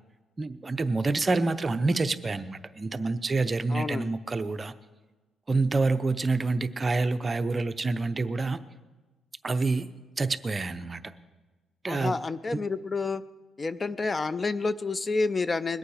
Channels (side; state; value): both; normal; correlation 0.92